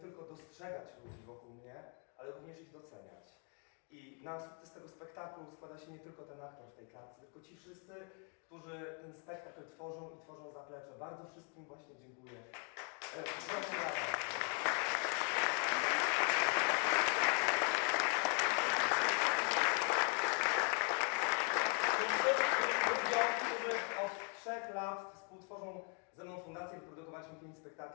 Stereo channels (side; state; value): right; quieter; 39.4 dB